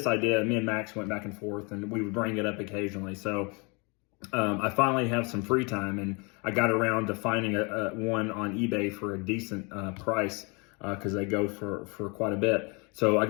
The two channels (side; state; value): right; quieter; 30.6 dB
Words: idea, me and Max went back and forth, and we would bring it up occasionally. So I finally have some free time, and I got around to finding one on eBay for a decent price, because they go for quite a bit. So I